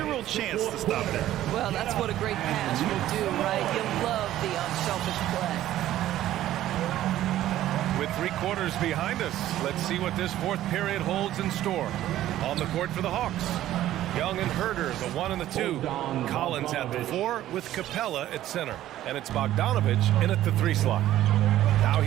chance to stop that. Well, that's what a great pass will do, right? You love the unselfish play. With 3 quarters behind us, let's see what this 4th period holds in store. On the court for the Hawks, Young and Herder, the 1 and the 2. Collins at the 4 with Capella at center. And it's Bogdanovich in at the 3 slot. Now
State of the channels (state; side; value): quieter; left; 13.4 dB